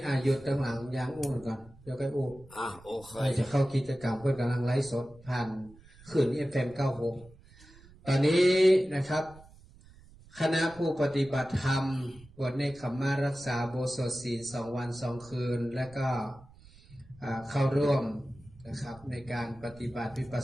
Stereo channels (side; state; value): right; noise; rumble, 23 dB below the sound